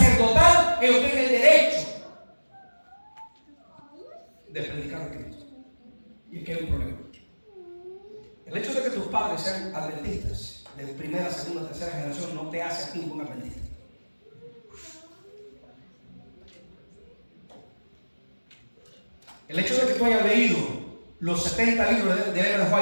ellos tienen el derecho de predicar a Cristo. Y aquí hay un problema. El hecho de que tus padres sean adventistas de primera, segunda, tercera generación no te hace a ti un buen adventista. El hecho de que tú hayas leído los 70 libros de Ellen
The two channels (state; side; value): inverted; both; correlation -1.00